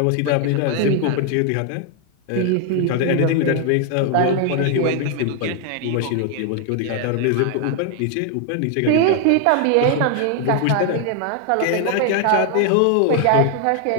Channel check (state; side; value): different; both; correlation 0.00